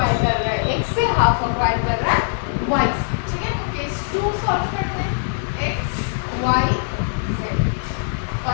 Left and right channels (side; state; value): right; silent; digital silence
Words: हाफ अक्वायर कर रहा है वाई से, ठीक है। तो केस 2 सॉल्व करते हैं, एक्स वाई जेड,